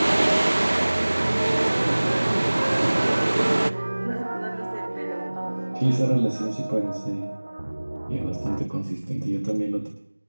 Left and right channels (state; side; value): inverted; both; correlation -1.00